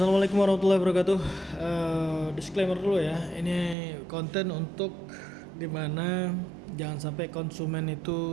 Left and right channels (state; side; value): drops out; left; at 3.8 s